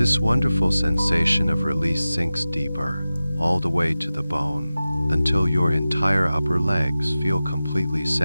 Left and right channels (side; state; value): both; inverted; correlation -0.96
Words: wonderful sensation of release sinks deeper, all the way to the bone, until your entire upper legs feel completely